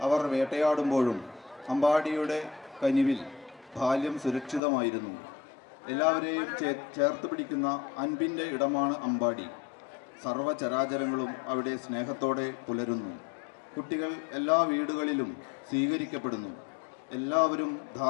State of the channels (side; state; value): right; drops out; at 4.6 s